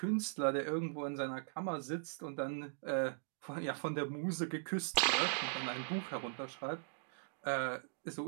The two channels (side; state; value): left; silent; digital silence